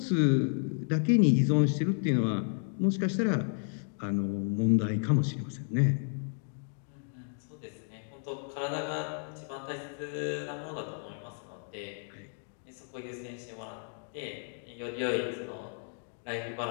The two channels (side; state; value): right; silent; 56 dB below the other